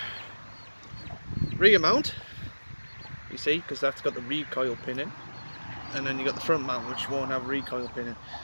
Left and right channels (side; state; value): both; inverted; correlation -1.00